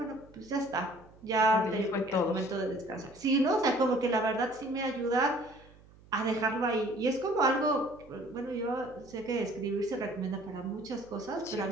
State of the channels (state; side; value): noise; right; hum, 24 dB below the sound